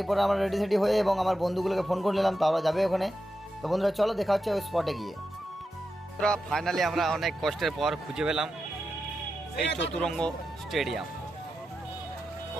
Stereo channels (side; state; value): both; normal; correlation 0.89